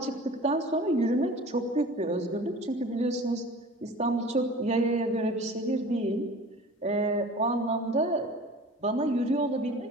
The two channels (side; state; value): both; normal; correlation 0.42